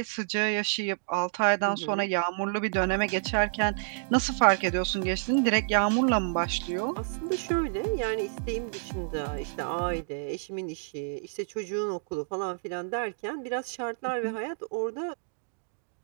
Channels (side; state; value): left; silent; digital silence